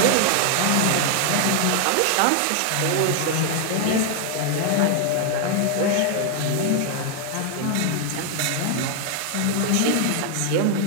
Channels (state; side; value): different; both; correlation 0.00